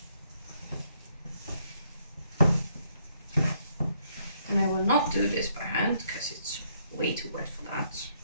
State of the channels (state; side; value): inverted; both; correlation -0.72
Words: And I will not do this by hand because it's way too wet for that.